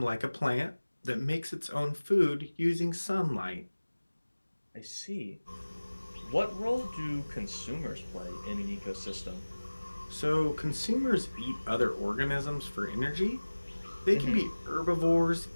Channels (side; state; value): both; inverted; correlation -1.00